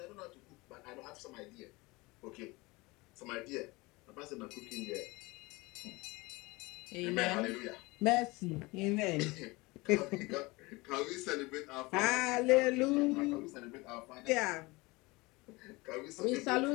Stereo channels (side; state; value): right; quieter; 23.4 dB